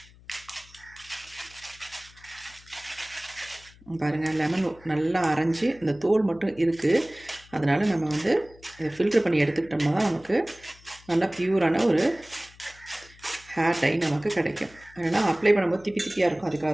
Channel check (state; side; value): noise; left; hum, 24 dB below the sound